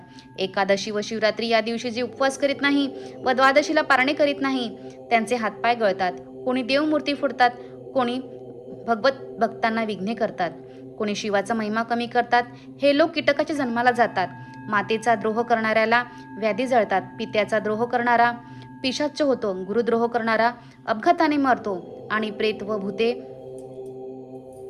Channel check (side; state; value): both; identical; correlation 1.00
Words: एकादशी व शिवरात्री या दिवशी जे उपवास करीत नाही व द्वादशीला पारणे करीत नाही त्यांचे हातपाय गळतात. कोणी देवमूर्ती फोडतात, कोणी भक्तांना विघ्ने करतात, कोणी शिवाचा महिमा कमी करतात. हे लोक कीटकाच्या जन्माला जातात. मातेचा द्रोह करणाऱ्याला व्याधी जळतात. पित्याचा द्रोह करणारा पिशाच्च होतो. गुरुद्रोह करणारा अपघाताने मरतो आणि प्रेत व भूते